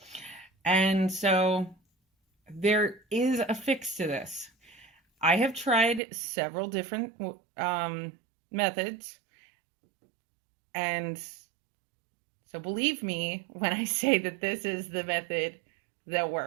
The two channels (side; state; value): left; drops out; at 6.0 s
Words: And so there is a fix to this. I have tried several different methods, and so believe me when I say that this is the method that